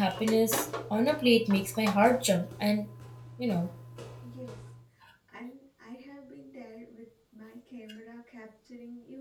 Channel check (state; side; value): identical; both; correlation 1.00